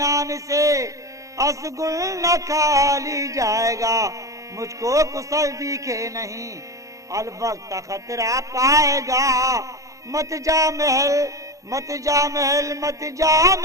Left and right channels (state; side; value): late; left; 0.16 ms